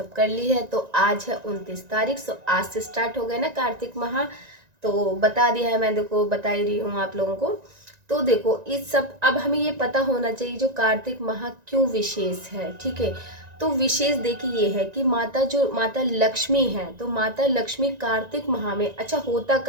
कर ली है। तो आज है 29 तारीख, सो आज से स्टार्ट हो गए ना कार्तिक माह, तो बता दिया है मैं, देखो बता ही रही हूँ आप लोगों को। तो देखो इस सब, अब हमें ये पता होना चाहिए जो कार्तिक माह क्यों विशेष है, ठीक है। तो विशेष देखिए ये है कि माता लक्ष्मी है, तो माता लक्ष्मी कार्तिक माह में, अच्छा होता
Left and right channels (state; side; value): late; left; 1.9 ms